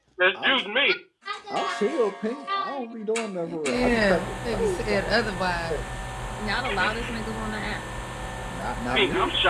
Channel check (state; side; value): identical; both; correlation 1.00